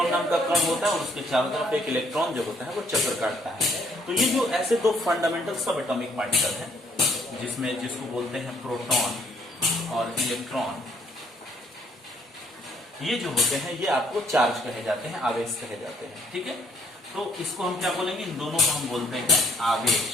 नाम का कण होता है, और उसके चारों तरफ एक इलेक्ट्रॉन जो होता है वो चक्कर काटता है। तो ये जो ऐसे दो फंडामेंटल सब एटॉमिक पार्टिकल हैं, जिसको बोलते हैं प्रोटॉन और इलेक्ट्रॉन, ये जो होते हैं ये आपको चार्ज कहे जाते हैं, आवेश कहे जाते हैं। ठीक है, तो इसको हम क्या बोलेंगे, इन दोनों को हम बोलते हैं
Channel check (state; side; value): normal; both; correlation 0.67